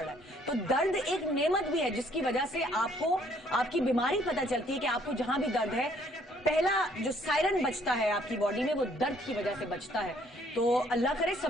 है। तो दर्द एक नेमत भी है जिसकी वजह से आपको आपकी बीमारी पता चलती है कि आपको जहां भी दर्द है, पहला जो सायरन बजता है आपकी बॉडी में वो दर्द की वजह से बजता है। तो अल्लाह करे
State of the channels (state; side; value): normal; both; correlation 0.63